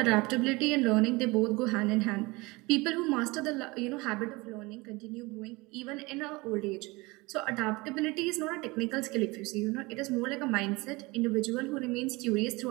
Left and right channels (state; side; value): quieter; left; 23.8 dB